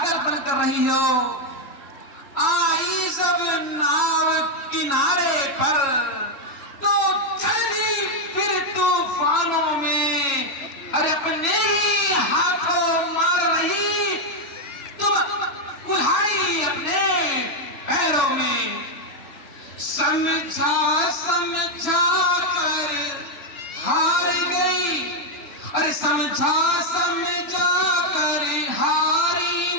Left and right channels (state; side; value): late; right; 3.6 ms